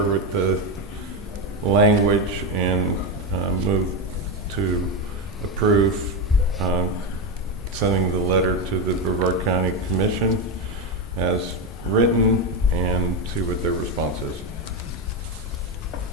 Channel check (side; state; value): both; normal; correlation 0.11